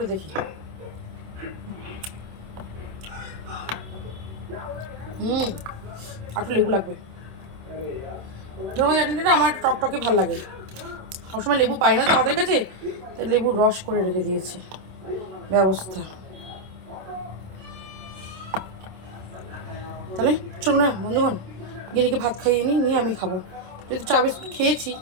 দেখি। একটু লেবু লাগবে, ধনেপাতা চাটনিটা আমার টকটকে ভালো লাগে, সবসময় লেবু পাই না তো আমাদের কাছে, তাই লেবুর রস করে রেখে দিয়েছে ব্যবস্থা। তাহলে চলুন না বন্ধুগণ, গিনিকে ভাত খাইয়ে নিয়ে আমি খাবো, যেহেতু চা বিস্কুট খেয়েছি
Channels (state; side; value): late; left; 27 ms